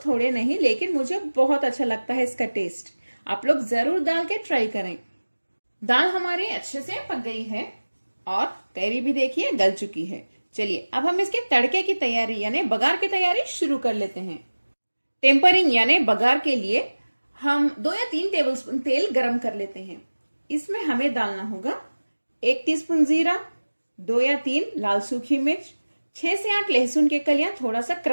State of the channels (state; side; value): inverted; both; correlation -1.00